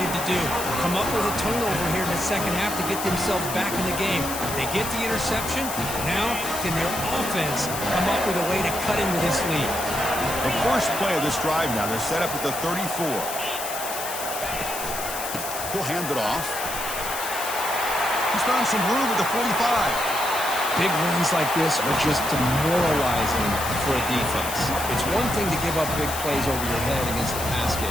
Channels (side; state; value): left; noise; hiss, 6 dB below the sound